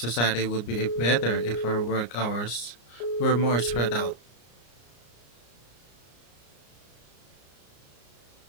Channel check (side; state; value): right; late; 34 ms